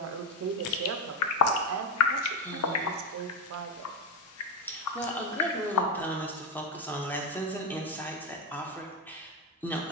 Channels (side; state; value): both; normal; correlation 0.11